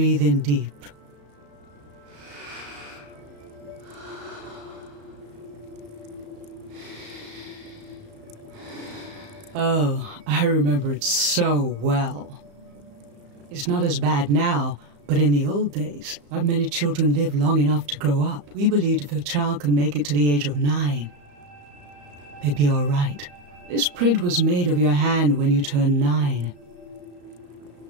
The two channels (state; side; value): late; left; 34 ms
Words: in deep. Oh, I remember it so well. It's not as bad now, but in the old days, not many children lived long enough to grow up. We believed if a child could make it to the age of 9, they'd be all right. This print was made of your hand when you turned 9.